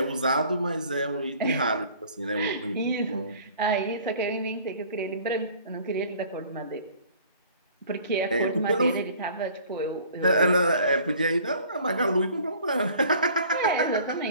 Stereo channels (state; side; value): inverted; both; correlation -0.50